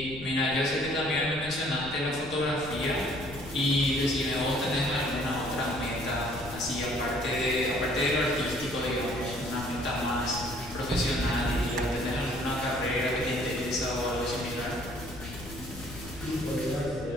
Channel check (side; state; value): left; noise; rumble, 13 dB below the sound